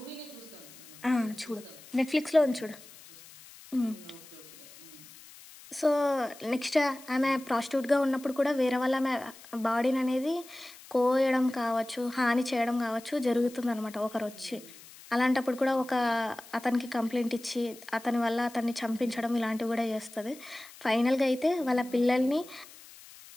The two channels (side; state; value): left; noise; hiss, 20 dB below the sound